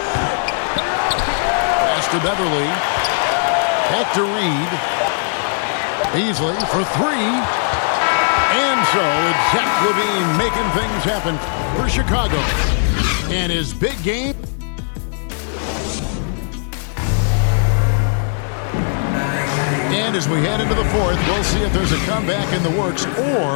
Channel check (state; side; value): silent; right; 67 dB below the other